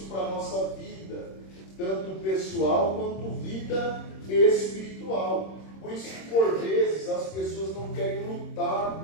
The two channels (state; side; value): late; right; 26 ms